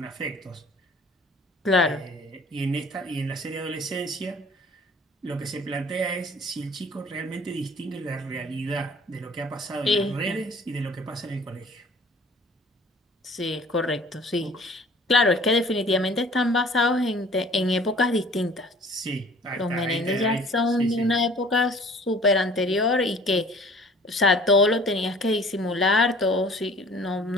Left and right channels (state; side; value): normal; both; correlation 0.50